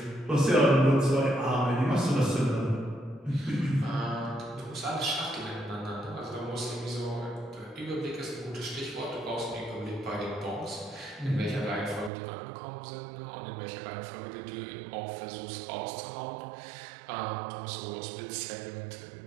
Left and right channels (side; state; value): left; drops out; at 12.1 s